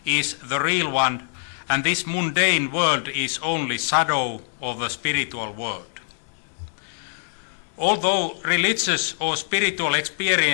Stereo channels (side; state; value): right; silent; digital silence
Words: is the real one, and this mundane world is only shadow of the spiritual world. Although religious or spiritual